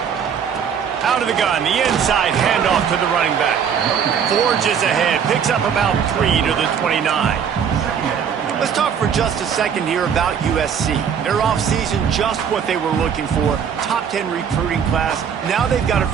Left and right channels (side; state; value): left; quieter; 7.5 dB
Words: Out of the gun, the inside handoff to the running back. Forges ahead, picks up about 3 to the 29. Let's talk for just a second here about USC. Their offseason, just what they were looking for. Top 10 recruiting class. Now they've got to